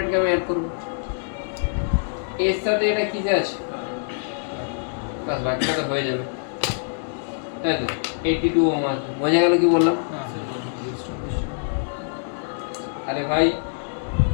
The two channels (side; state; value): right; silent; digital silence